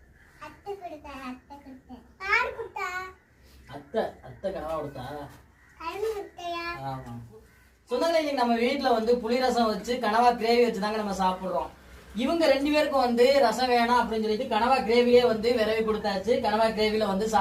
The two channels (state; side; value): identical; both; correlation 1.00